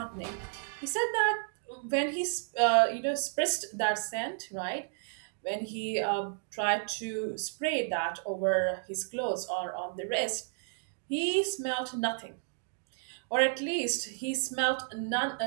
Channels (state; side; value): silent; left; digital silence